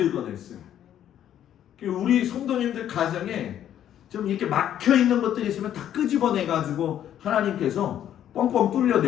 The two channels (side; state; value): right; quieter; 10.7 dB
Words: 우리 성도님들 가정에 좀 이렇게 막혀있는 것들이 있으면 다 끄집어내가지고 하나님께서 뻥뻥 뚫려